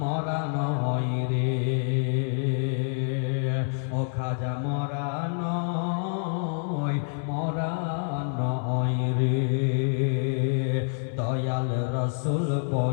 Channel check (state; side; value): silent; right; 60 dB below the other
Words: নয় রে। ও খাজা মরা নয় রে। দয়াল রসুল